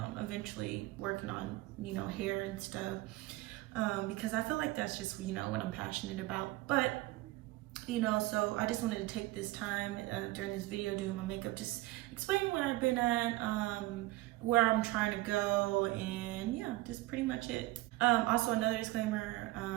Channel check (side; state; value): left; quieter; 19.1 dB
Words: eventually working on, you know, hair and stuff, because I feel like that's just, you know, what I'm passionate about. But, you know, so I just wanted to take this time during this video doing my makeup, just explaining where I've been at, where I'm trying to go, and yeah, just pretty much it. Also, another disclaimer,